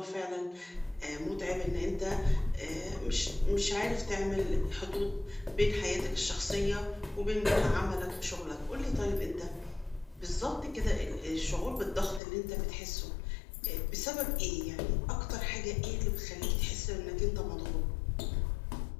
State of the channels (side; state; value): right; drops out; at 12.2 s